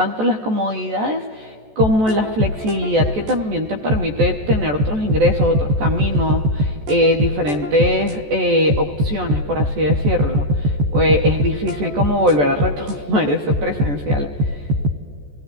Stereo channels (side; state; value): left; late; 14 ms